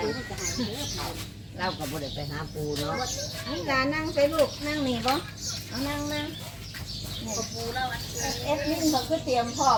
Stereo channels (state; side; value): identical; both; correlation 1.00